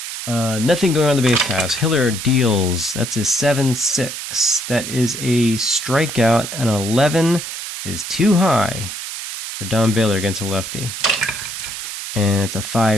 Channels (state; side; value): noise; right; hiss, 7 dB below the sound